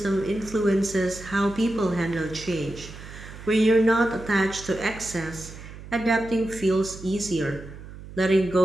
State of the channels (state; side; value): noise; right; hum, 14 dB below the sound